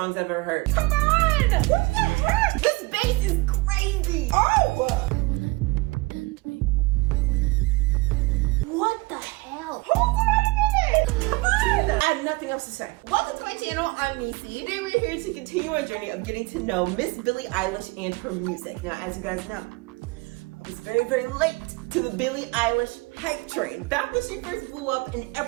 I've ever heard. Come on! What the heck? This bass is crazy! Oh! What the hell? Hold on a minute! Come on! I have nothing else to say. Welcome to my channel, I'm Nisi. Today we're here to continue our journey of getting to know Miss Billie Eilish and her music. Now, as you guys know, I was very, very late to the Billie Eilish hype train. Back when she first blew up and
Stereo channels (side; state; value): left; quieter; 24.5 dB